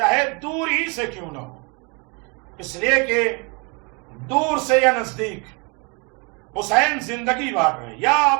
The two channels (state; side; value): quieter; left; 31.8 dB